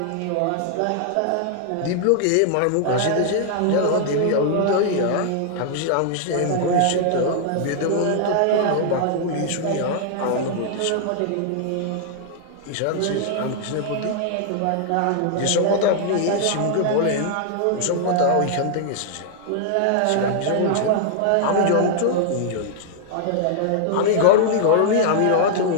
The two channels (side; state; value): both; different; correlation -0.01